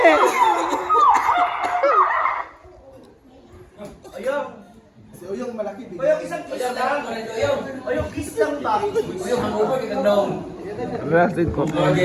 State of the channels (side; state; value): both; identical; correlation 1.00